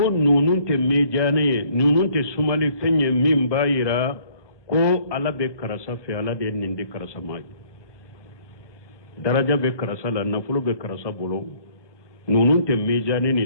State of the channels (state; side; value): late; right; 1.2 ms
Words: nunun te mejane nunun te sumali fenye min bayira ko ala be karasa fe ala de nindi karasa mai daraja be karasa la nafulo be karasa bolo nunun te mejane